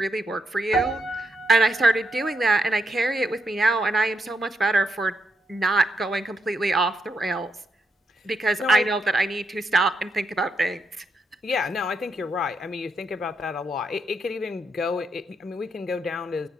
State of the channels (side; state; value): both; normal; correlation 0.81